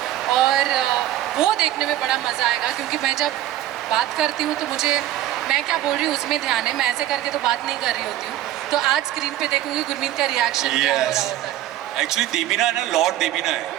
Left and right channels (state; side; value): quieter; left; 13.4 dB